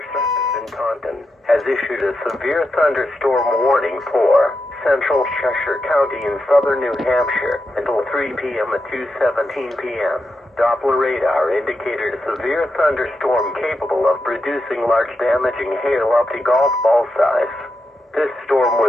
service in Taunton has issued a severe thunderstorm warning for central Cheshire County in southern New Hampshire until 3 p.m. at 2:17 p.m. Doppler radar indicated a severe thunderstorm capable of producing large damaging hail up to golf ball size. This storm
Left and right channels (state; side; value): normal; both; correlation 0.86